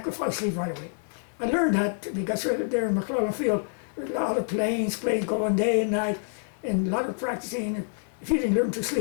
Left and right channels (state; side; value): silent; right; 60 dB below the other